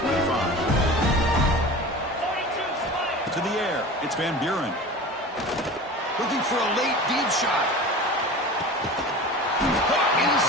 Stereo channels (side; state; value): both; normal; correlation 0.35